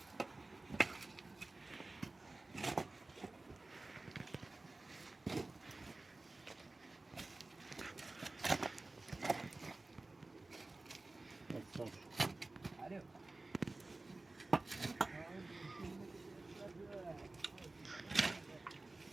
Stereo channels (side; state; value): left; quieter; 3.1 dB